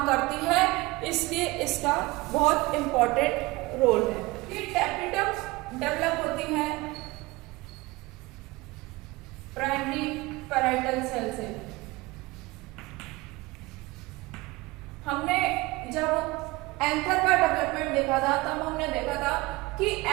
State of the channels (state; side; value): quieter; left; 21.8 dB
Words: करती है, इसलिए इसका बहुत इंपॉर्टेंट रोल है। ये टैपेटम डेवलप होती है प्राइमरी पैराइटल सेल से। हमने जब एंथर का डेवलपमेंट देखा था तब हमने देखा था कि